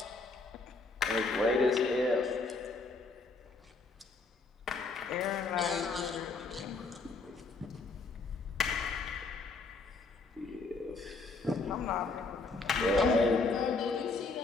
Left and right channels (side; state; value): right; quieter; 3.9 dB